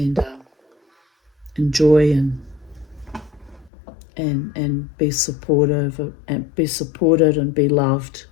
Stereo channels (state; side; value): drops out; right; at 3.7 s